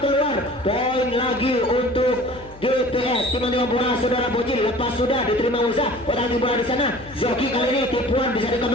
Poin lagi untuk GPS. Tim-tim bola saudara Bocil, lepas sudah diterima Moza, otak-atik bola di sana, Zoki kali ini tipuan bisa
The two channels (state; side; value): noise; left; hum, 20 dB below the sound